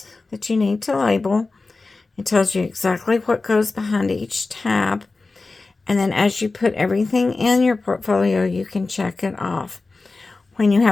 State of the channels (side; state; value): right; quieter; 3.6 dB